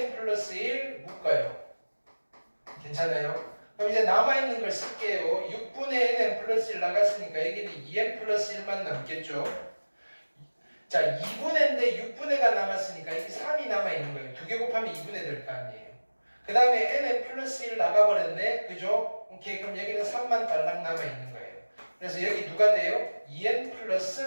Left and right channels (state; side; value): inverted; both; correlation -1.00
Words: 플러스 1 묶어요. 괜찮아요? 그럼 이제 남아있는 걸 쓸게요. 6분의 nn 플러스 1 나갔으니까 여기는 2n 플러스 1만 남겠죠? 자, 2분의인데 6분의가 남았으니까 여기 3이 남아있는 거예요. 2개 곱하면 2분의 될 거 아니에요. 그 다음에 nn 플러스 1 나가버렸네. 그죠? 오케이. 그럼 여기는 3만 달랑 남아있는 거예요. 그래서 여기 누가 돼요? 2n